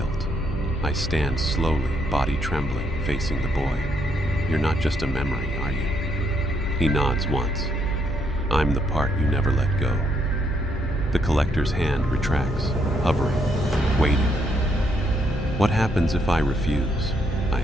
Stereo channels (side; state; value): both; normal; correlation 0.74